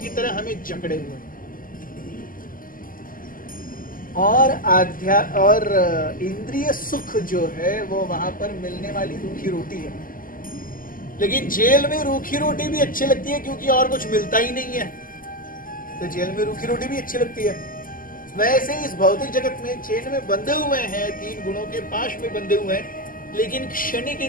तरह हमें जकड़े हुए और इंद्रिय सुख जो है वो वहां पर मिलने वाली रूखी रोटी है। लेकिन जेल में रूखी रोटी भी अच्छी लगती है क्योंकि और कुछ मिलता ही नहीं है, तो जेल में रूखी रोटी भी अच्छी लगती है। वैसे इस भौतिक जगत में चेन में बंधे हुए हैं, 3 गुणों के पाश में बंधे हुए हैं, लेकिन क्षणिक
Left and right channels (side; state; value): right; late; 0.41 ms